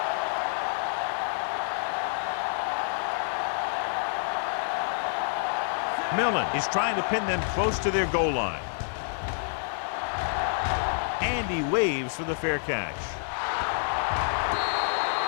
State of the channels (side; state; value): right; silent; 59 dB below the other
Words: Millen is trying to pin them close to their goal line. And he waves for the fair catch.